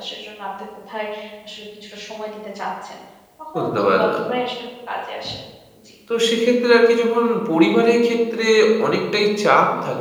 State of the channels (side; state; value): both; identical; correlation 1.00